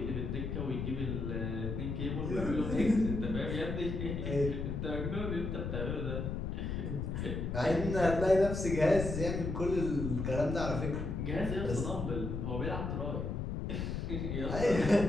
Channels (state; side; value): noise; left; rumble, 3 dB below the sound